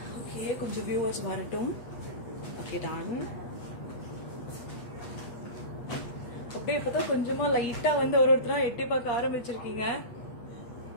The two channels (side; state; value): right; late; 8.4 ms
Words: Okay, கொஞ்சம் viewers வரட்டும். Okay, done. அப்படியே இப்பதான் கொஞ்சமா லைட்டா வந்து ஒருத்தரா எட்டி பார்க்க ஆரம்பிச்சிருக்கீங்க.